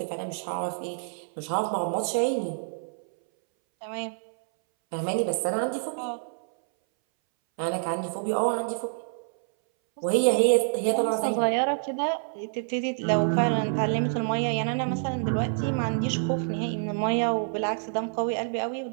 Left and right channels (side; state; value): left; silent; 60 dB below the other